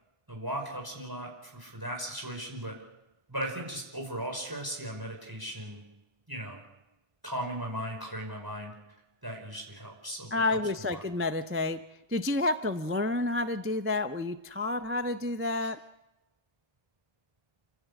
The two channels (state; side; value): late; left; 1.0 ms